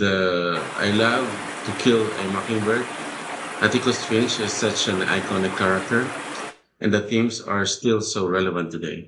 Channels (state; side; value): identical; both; correlation 1.00